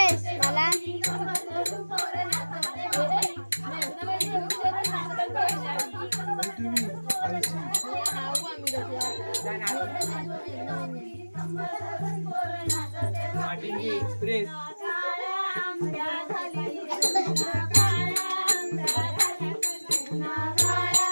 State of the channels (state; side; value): inverted; both; correlation -1.00